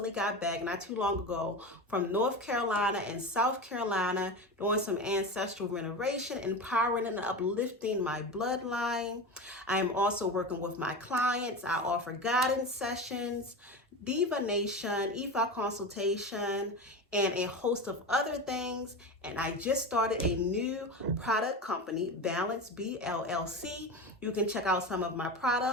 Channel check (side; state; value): both; normal; correlation 0.25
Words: got back not too long ago from North Carolina and South Carolina, doing some ancestral renovation, empowering and uplifting my bloodline. I am also working with my clients. I offer guidance sessions, divination, Ifa consultation, and a host of other things. And I just started a new product company, Balance B LLC. You can check out some of my